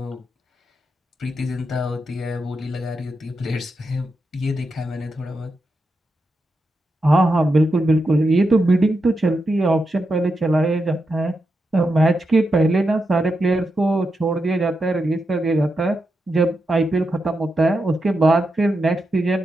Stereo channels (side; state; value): both; normal; correlation 0.86